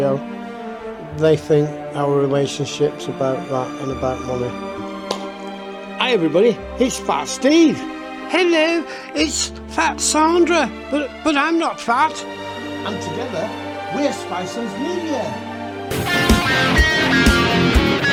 they think our relationship's about that and about money. Hi everybody, it's Fat Steve. Hello, it's Fat Sandra, but I'm not fat. And together, we're Spicehead Media.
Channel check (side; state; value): both; identical; correlation 1.00